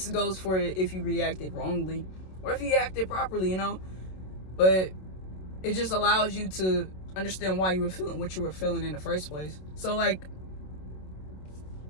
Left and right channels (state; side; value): late; right; 27 ms